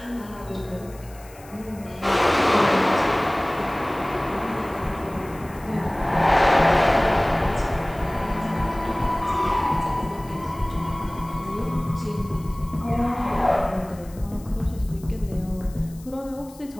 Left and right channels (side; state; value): left; noise; hiss, 23 dB below the sound